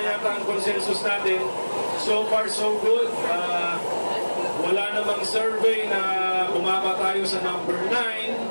yata ang consensus natin. So far, so good. Wala namang survey na bumaba tayo sa number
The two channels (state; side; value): inverted; both; correlation -1.00